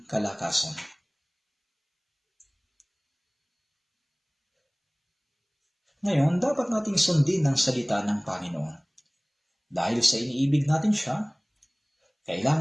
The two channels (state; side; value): identical; both; correlation 1.00